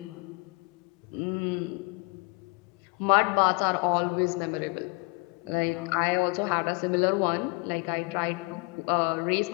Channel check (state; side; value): quieter; right; 29.8 dB